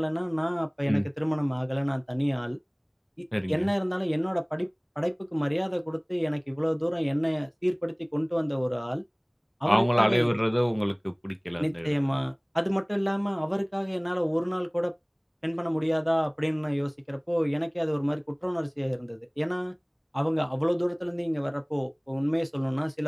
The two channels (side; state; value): both; identical; correlation 1.00